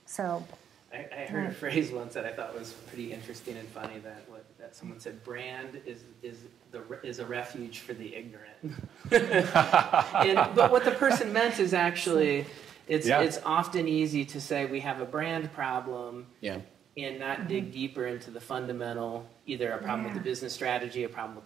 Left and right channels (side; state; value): left; quieter; 9.0 dB